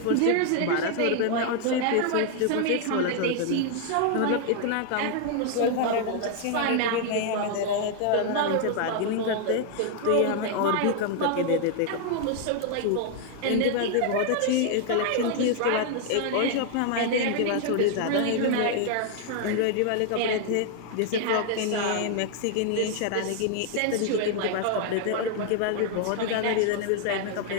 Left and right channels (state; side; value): different; both; correlation 0.00